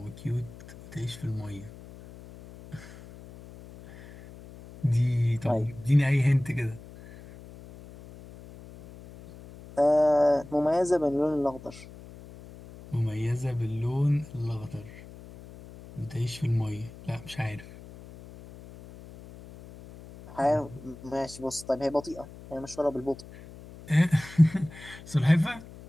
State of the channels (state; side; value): noise; left; hum, 18 dB below the sound